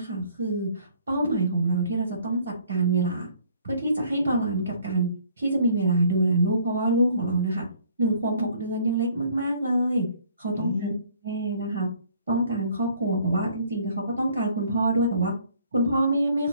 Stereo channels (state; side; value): inverted; both; correlation -0.59